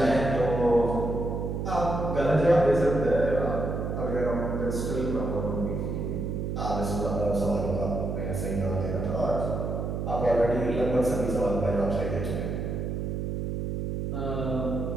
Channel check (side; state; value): right; noise; hum, 2 dB below the sound